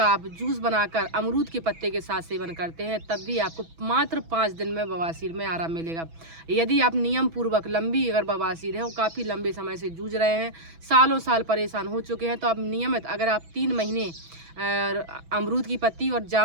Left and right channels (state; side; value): late; left; 6.1 ms